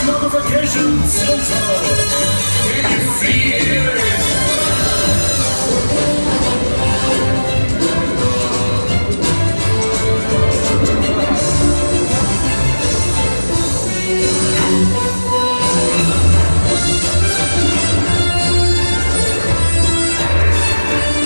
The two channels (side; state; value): both; inverted; correlation -1.00